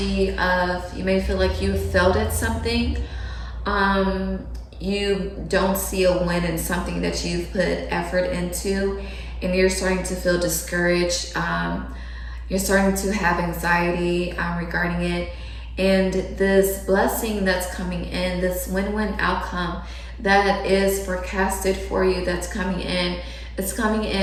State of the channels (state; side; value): identical; both; correlation 1.00